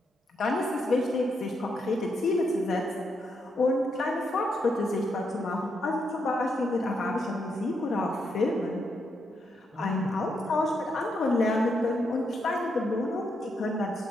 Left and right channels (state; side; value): normal; both; correlation 0.80